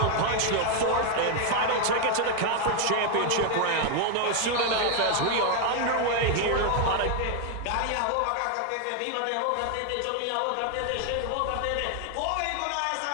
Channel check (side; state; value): both; different; correlation 0.00